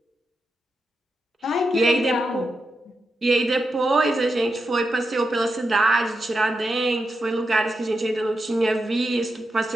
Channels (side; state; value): both; normal; correlation 0.87